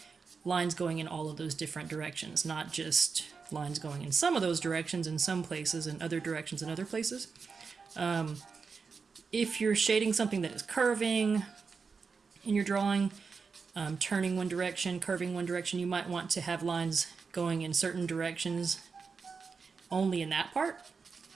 lines going in all of those different directions, not just lines going in some of those directions in some places and other directions in other places. If you're shading something that is curving in your drawing, turning one direction, curving one direction, you might want to have lines going in certain directions only in that part.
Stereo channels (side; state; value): left; quieter; 5.1 dB